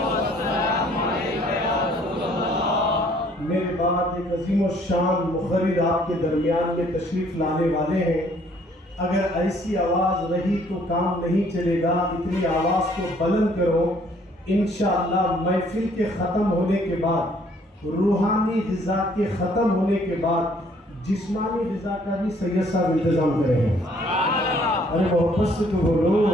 میرے بعد ایک عظیم الشان مخرر آپ کے درمیان میں تشریف لانے والے ہیں۔ اگر ایسی آواز رہی تو کام نہیں چلے گا، اتنی آواز کو بلند کرو۔ انشاءاللہ محفل کے ختم ہونے کے بعد، روحانی غذا کے ختم ہونے کے بعد جسمانی غذا کا بھی سید صاحب انتظام کریں گے۔ ارے محبت سے تو بولو،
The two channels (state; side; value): normal; both; correlation 0.62